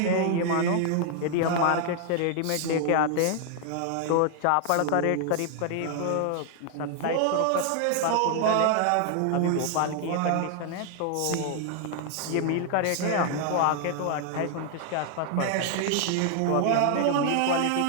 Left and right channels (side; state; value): both; different; correlation 0.00